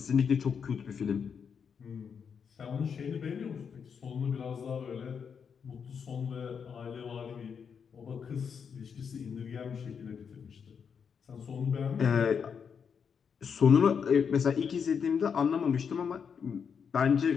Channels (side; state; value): right; quieter; 6.7 dB